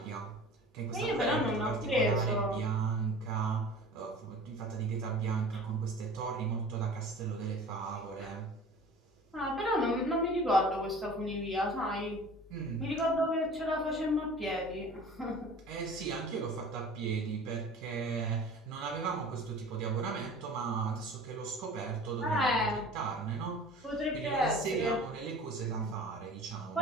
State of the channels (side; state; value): both; normal; correlation 0.42